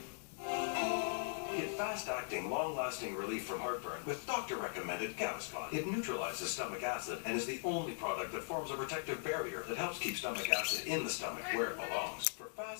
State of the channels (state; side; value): silent; right; digital silence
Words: Get fast-acting, long-lasting relief from heartburn with doctor-recommended Gaviscon. It neutralizes stomach acid and is the only product that forms a protective barrier that helps keep stomach acid in the stomach where it belongs. For